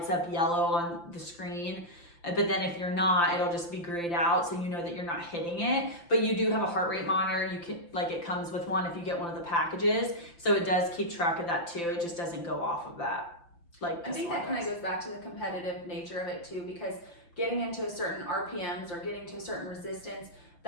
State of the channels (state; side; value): late; right; 5.8 ms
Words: up yellow on the screen. But then if you're not, it'll just be grayed out, so you know that you're not hitting it. But you do have a heart rate monitor. You can, like, it comes with one if you get one of the packages. So it does keep track of that too. It just doesn't go off of that. Like, I think that kind of goes back to the competitive nature of it too, because getting into a certain RPMs or getting to a certain resistance,